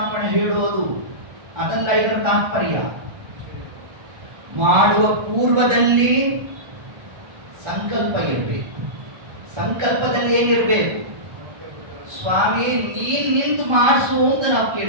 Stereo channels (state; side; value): late; left; 1.3 ms